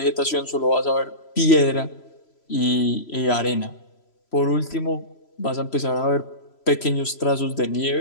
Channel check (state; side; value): late; right; 3.0 ms